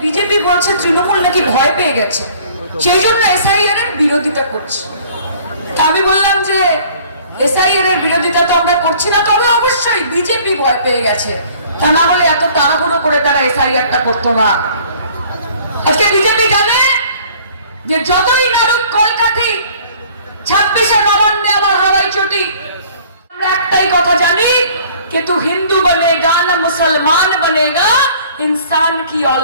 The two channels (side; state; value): both; inverted; correlation -0.53